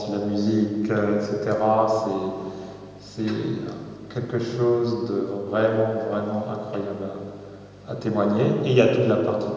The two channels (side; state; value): both; identical; correlation 1.00